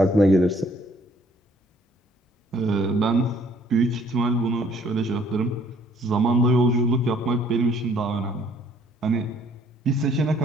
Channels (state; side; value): normal; both; correlation 0.61